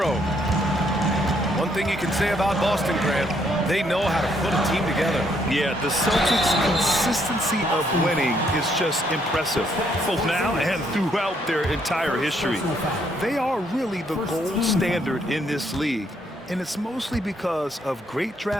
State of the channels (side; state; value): both; normal; correlation 0.71